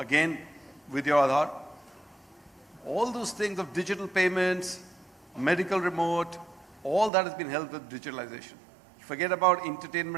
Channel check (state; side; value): drops out; left; at 7.1 s